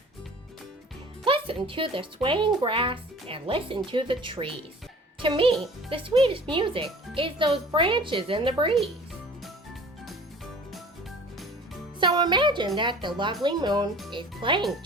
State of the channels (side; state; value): both; normal; correlation 0.45